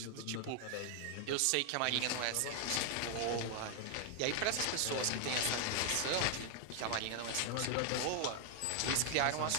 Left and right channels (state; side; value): different; both; correlation 0.00